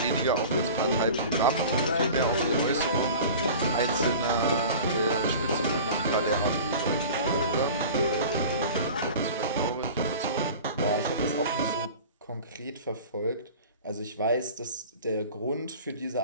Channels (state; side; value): inverted; both; correlation -0.38